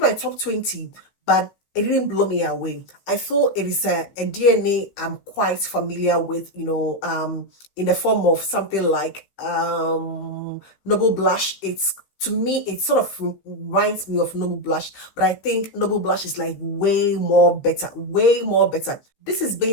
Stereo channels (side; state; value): right; late; 15 ms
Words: my top 20, but it didn't blow me away. I feel it is a DNA I'm quite familiar with, in the form of something like Noble Blush. To me, it sort of reminds me of Noble Blush, but I think Noble Blush is like way more better. This is